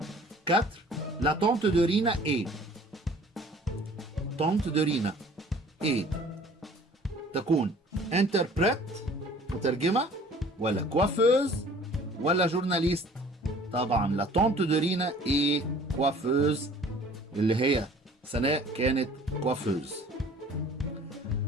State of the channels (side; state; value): both; normal; correlation 0.51